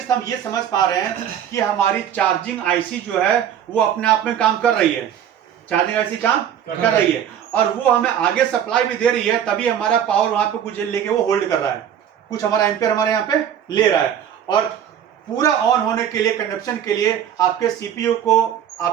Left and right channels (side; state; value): left; quieter; 9.6 dB